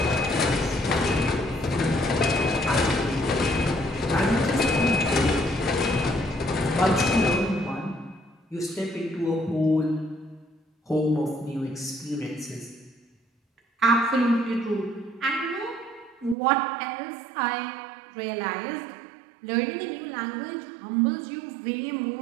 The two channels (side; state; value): left; drops out; at 16.4 s